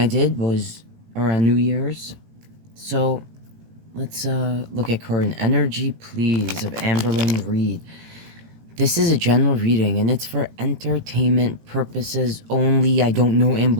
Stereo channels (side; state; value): left; late; 18 ms